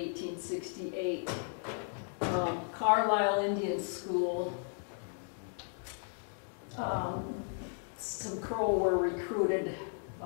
Carlisle Indian School, some Crow were recruited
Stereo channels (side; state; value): right; silent; 54 dB below the other